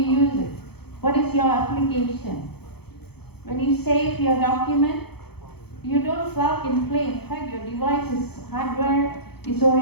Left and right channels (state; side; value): late; right; 0.96 ms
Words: use it? What is your application? When you save your document, you don't plug and play. In fact, your device's hardware is